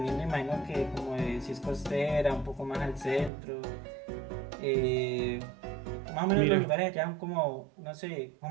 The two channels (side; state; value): left; drops out; at 3.3 s